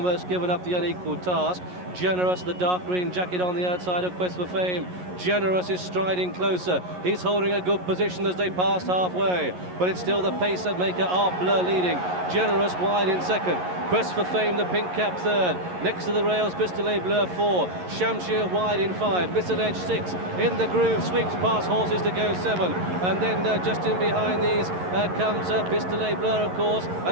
given up the unequal task. Generous, the dark green jacket on the outside of Quest for Fame. Generous is striding closer. He's holding a good position as they pass halfway, but it's still the pace that maker Art Bleu leading. Generous wide in second. Quest for Fame, the pink cap third. Next to the rails, Pistolet Bleu 4. Shamshir wide in 5. Misalledge 6. In the groove, sweeps past horses to go 7. And then just in behind these comes Pistolet Bleu, of course,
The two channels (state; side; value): late; left; 11 ms